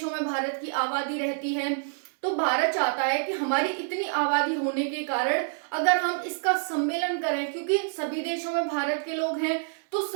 में भारत की आबादी रहती है, तो भारत चाहता है कि हमारी इतनी आबादी होने के कारण अगर हम इसका सम्मेलन करें, क्योंकि सभी देशों में भारत के लोग हैं, तो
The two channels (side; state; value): left; silent; digital silence